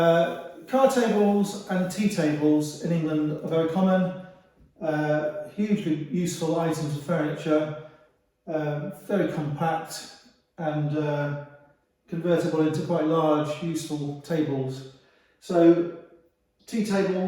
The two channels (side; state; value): both; identical; correlation 1.00